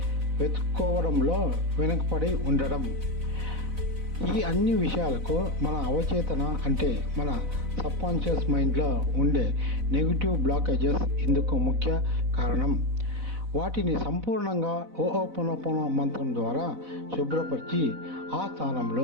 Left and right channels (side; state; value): left; late; 4.0 ms